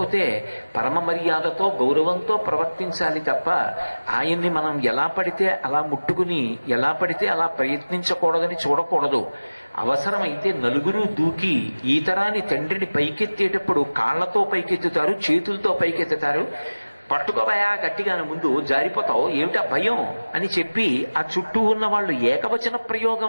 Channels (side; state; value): both; inverted; correlation -1.00